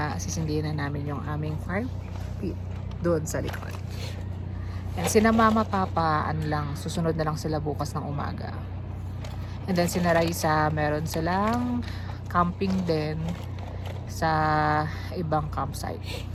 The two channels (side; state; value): both; identical; correlation 1.00